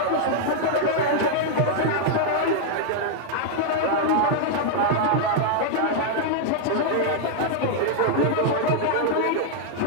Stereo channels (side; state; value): both; different; correlation -0.01